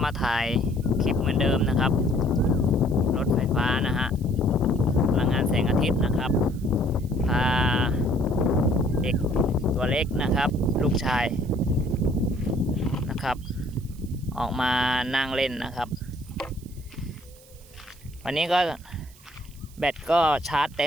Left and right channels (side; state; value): right; noise; hiss, 25 dB below the sound